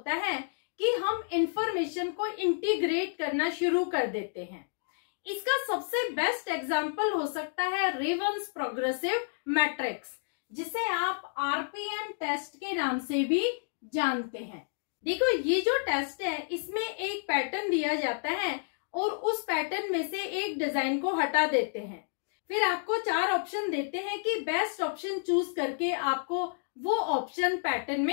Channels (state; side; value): silent; right; digital silence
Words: है कि हम इंफॉर्मेशन को इंटीग्रेट करना शुरू कर देते हैं। इसका सबसे बेस्ट एग्जांपल हो सकता है रेवंस प्रोग्रेसिव मैट्रिक्स, जिसे आप आरपीएम टेस्ट के नाम से भी जानते हैं। देखो, ये जो टेस्ट है इसमें एक पैटर्न दिया जाता है और उस पैटर्न में से एक डिजाइन को हटा देते हैं, फिर आपको 4 ऑप्शन देते हैं कि बेस्ट ऑप्शन चूज करके आपको वो ऑप्शन पैटर्न